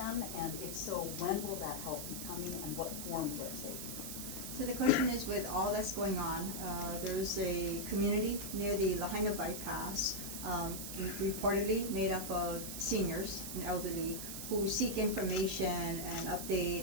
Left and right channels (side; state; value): right; noise; hiss, 6 dB below the sound